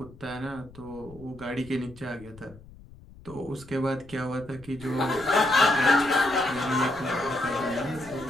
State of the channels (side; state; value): left; noise; rumble, 21 dB below the sound